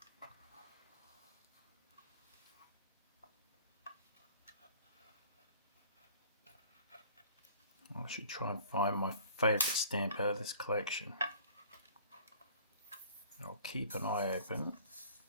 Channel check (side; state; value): both; inverted; correlation -0.50